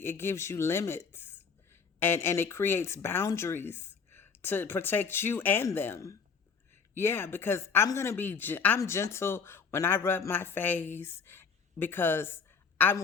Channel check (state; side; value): quieter; right; 5.7 dB